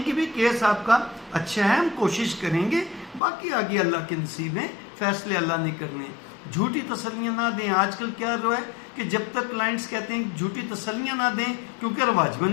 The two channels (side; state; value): right; drops out; at 3.2 s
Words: کہ بھی کیس آپ کا اچھا ہے، ہم کوشش کریں گے، باقی آگے اللہ کے نصیب ہیں، فیصلے اللہ نے کرنے ہیں۔ جھوٹی تسلیاں نہ دیں۔ آج کل کیا ہے کہ جب تک کلائنٹس کہتے ہیں جھوٹی تسلیاں نہ دیں کیونکہ رواج بن